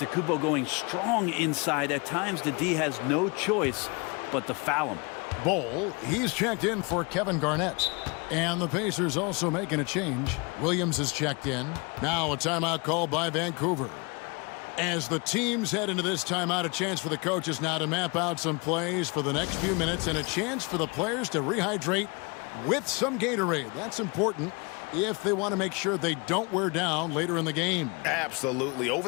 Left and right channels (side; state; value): right; quieter; 29.8 dB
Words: going strong inside. At times, the D has no choice but to foul him. Bowl, he's checked in for Kevin Garnett. And the Pacers also making a change. Williams is checked in. Now a timeout called by Vancouver. As the teams head into this timeout, a chance for the coaches now to map out some plays for the next few minutes and a chance for the players to rehydrate with some Gatorade. That's important if they want to make sure they don't wear down later in the game. Absolutely. Over